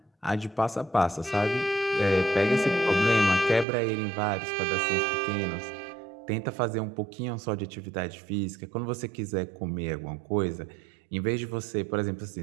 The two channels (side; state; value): left; drops out; at 3.7 s